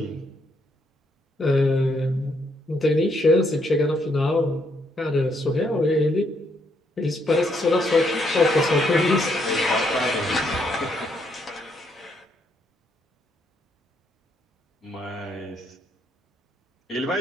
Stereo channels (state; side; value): normal; both; correlation 0.74